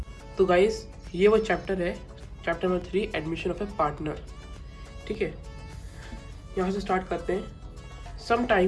तो गाइस, ये वो चैप्टर है, chapter number 3 admission of a partner. ठीक है, यहाँ से स्टार्ट करते हैं।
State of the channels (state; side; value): identical; both; correlation 1.00